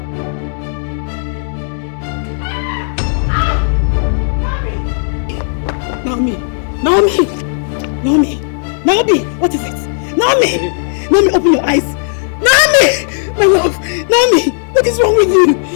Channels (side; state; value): right; silent; digital silence